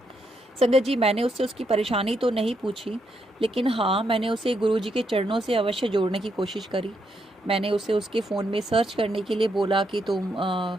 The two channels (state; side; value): normal; both; correlation 0.79